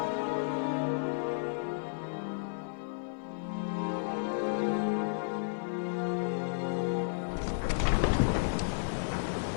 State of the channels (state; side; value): silent; right; digital silence